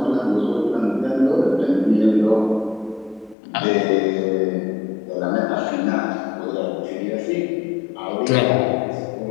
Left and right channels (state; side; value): drops out; right; at 3.4 s